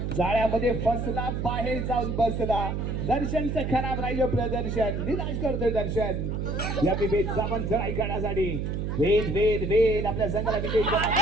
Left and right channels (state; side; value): noise; right; hum, 2 dB below the sound